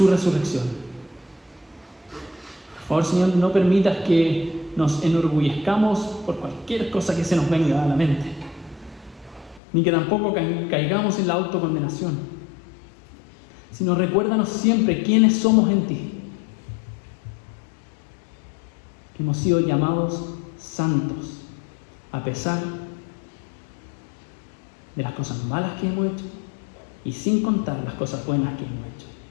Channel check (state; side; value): drops out; right; at 9.6 s